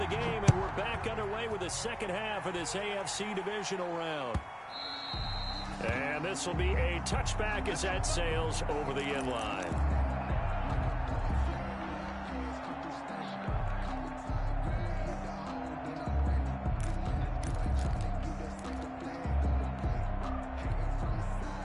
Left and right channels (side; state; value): both; identical; correlation 1.00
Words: game, and we're back underway with the second half of this AFC divisional round. And this will be a touchback as that sails over the end line.